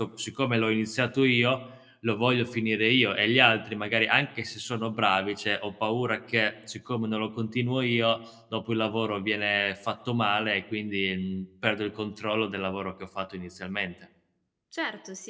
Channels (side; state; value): both; identical; correlation 1.00